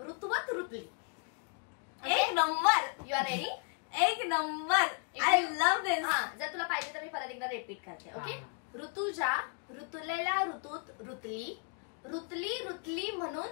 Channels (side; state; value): right; quieter; 38.5 dB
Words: ऋतवत रुतली. एक नंबर. You are ready? एक नंबर. I love this. हा, जर तुला पाहिजे तर मी परत एकदा रिपीट करते. ओके, हा. ऋतूच्या रुतलेल्या ऋतूत रुतली, रुतली रुतली म्हणून